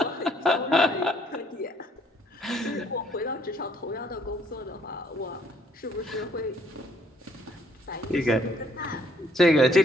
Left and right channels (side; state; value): both; normal; correlation 0.65